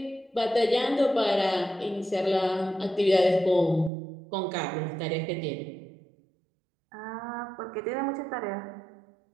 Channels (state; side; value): drops out; left; at 3.9 s